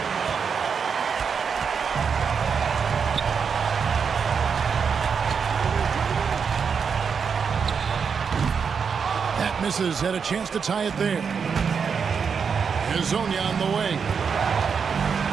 That misses. Had a chance to tie it there. Hazonia on the way.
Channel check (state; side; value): quieter; left; 6.2 dB